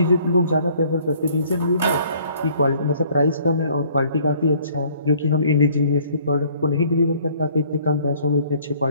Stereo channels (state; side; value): inverted; both; correlation -0.58